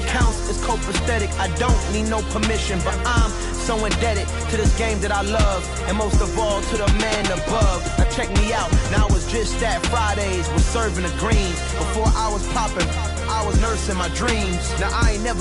is copacetic. I don't need no permission, but I'm so indebted to this game that I love, and most of all to the man above. Now check me out, now it's just that Fridays was serving the greens. Before I was popping, I was nursing my dreams. Now I ain't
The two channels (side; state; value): both; identical; correlation 1.00